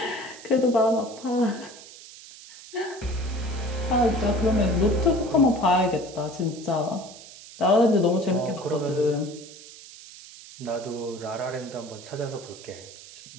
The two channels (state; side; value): noise; right; hiss, 17 dB below the sound